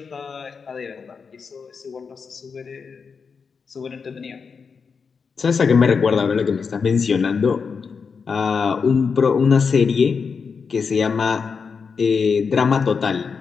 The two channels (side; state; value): right; quieter; 5.6 dB